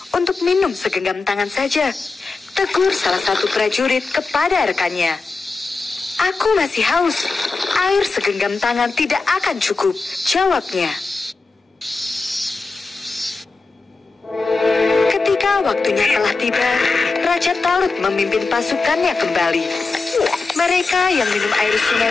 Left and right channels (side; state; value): right; quieter; 3.9 dB